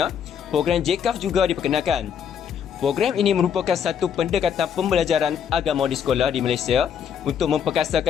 JCAF juga diperkenalkan. Program ini merupakan satu pendekatan pembelajaran agama di sekolah di Malaysia untuk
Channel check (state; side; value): quieter; right; 8.0 dB